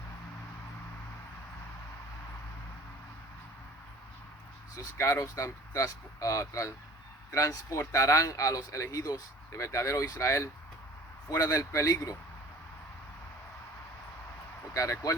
Esos carros transportarán a los elegidos de verdadero Israel fuera del peligro. Porque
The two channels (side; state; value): both; normal; correlation 0.46